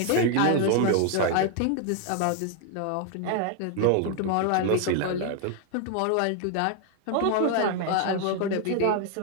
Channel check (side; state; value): both; different; correlation 0.00